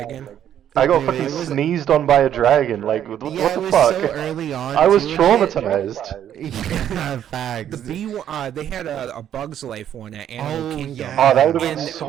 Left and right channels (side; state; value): left; quieter; 10.2 dB